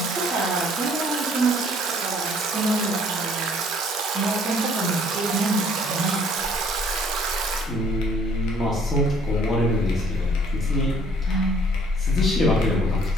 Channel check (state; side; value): normal; both; correlation 0.59